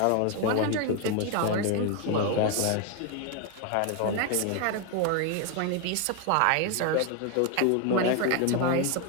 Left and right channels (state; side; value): different; both; correlation 0.01